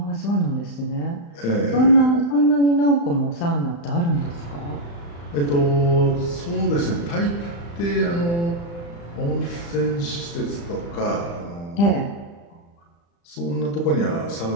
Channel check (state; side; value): late; right; 35 ms